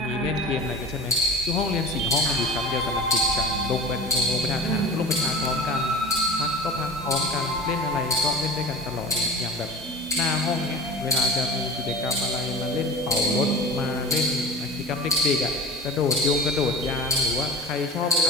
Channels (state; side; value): normal; both; correlation 0.35